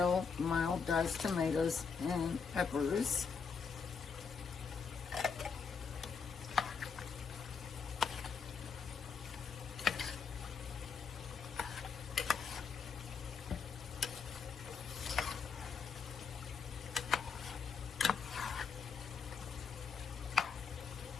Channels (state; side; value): quieter; right; 5.8 dB